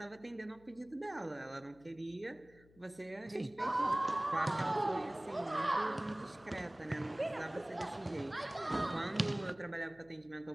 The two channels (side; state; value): left; noise; hum, 26 dB below the sound